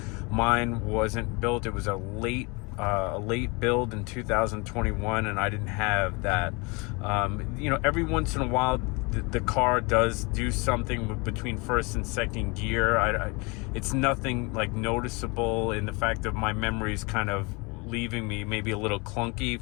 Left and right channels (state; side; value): quieter; right; 28.5 dB